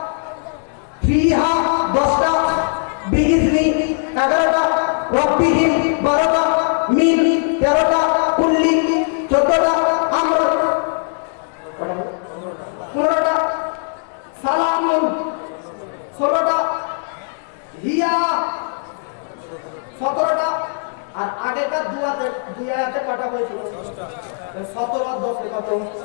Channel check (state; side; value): silent; right; digital silence